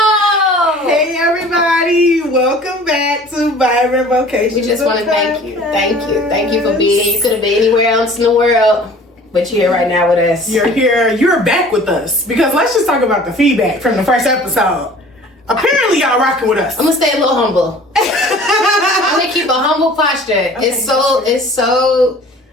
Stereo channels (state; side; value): normal; both; correlation 0.47